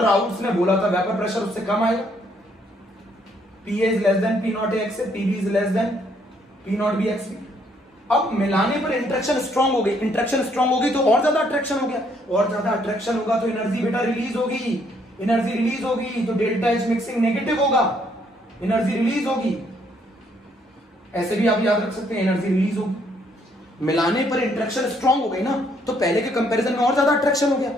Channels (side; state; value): both; normal; correlation 0.69